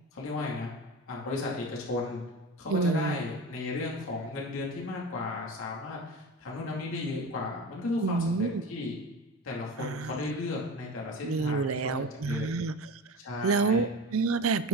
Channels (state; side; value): normal; both; correlation 0.31